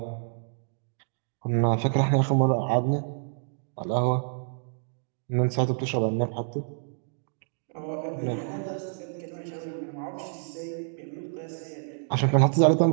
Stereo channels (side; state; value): left; silent; digital silence